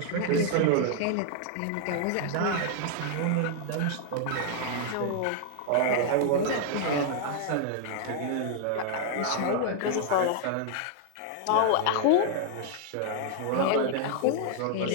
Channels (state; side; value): different; both; correlation 0.00